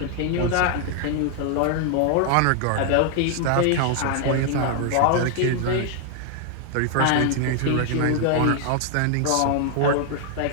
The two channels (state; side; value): different; both; correlation 0.00